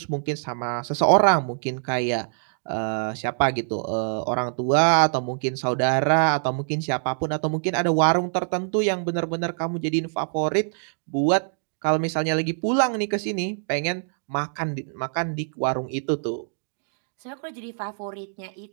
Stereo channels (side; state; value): left; silent; digital silence